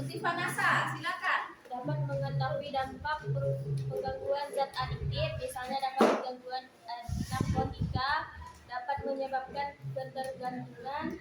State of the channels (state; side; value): identical; both; correlation 1.00